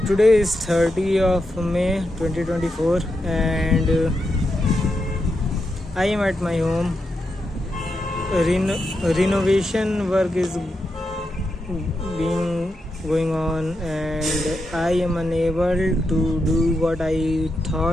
today is 30th of May 2024 and I am at my home. Renovation work is being going on and I am unable to do what I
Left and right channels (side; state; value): both; normal; correlation 0.86